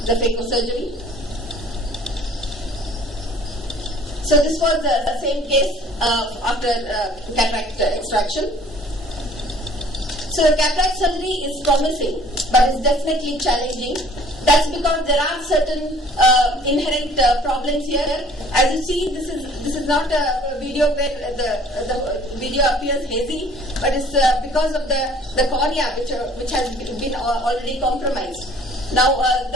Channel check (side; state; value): both; normal; correlation 0.53